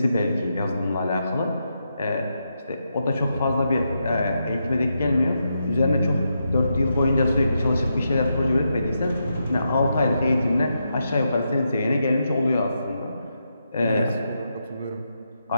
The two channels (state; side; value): inverted; both; correlation -0.84